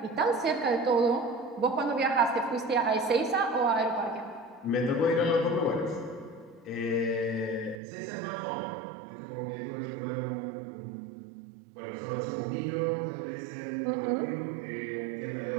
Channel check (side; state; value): left; drops out; at 7.8 s